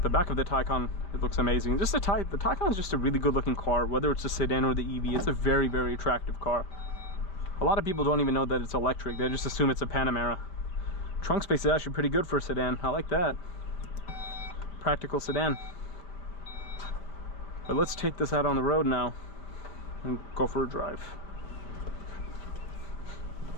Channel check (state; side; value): late; right; 5.2 ms